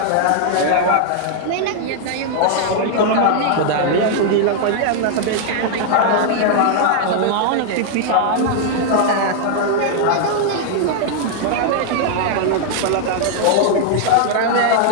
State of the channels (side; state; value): both; different; correlation -0.01